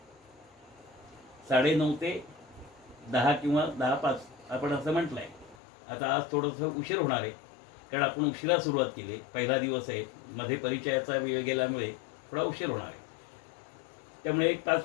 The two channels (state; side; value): drops out; right; at 5.6 s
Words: 9:30 ते 10 किंवा 10:05 आपण असं म्हटलंय. आता आज थोडंसं उशीर होणार आहे, कारण आपण उशिरा सुरुवात केली. पहिला दिवस आहे, मध्ये परिचयाचा वेळ गेल्यामुळे थोडा उशीर होणार आहे. त्यामुळे एक